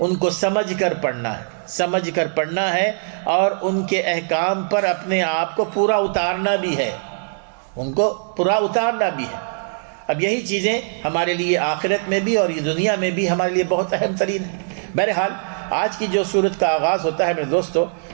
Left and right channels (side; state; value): left; silent; digital silence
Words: کو سمجھ کر پڑھنا ہے اور ان کے احکام پر اپنے آپ کو پورا اتارنا بھی ہے، اب یہی چیزیں ہمارے لیے آخرت میں بھی اور یہ دنیا میں بھی ہمارے لیے بہت اہم ترین ہے. بہرحال آج کی جو سورت کا آغاز ہوتا ہے میرے دوستو،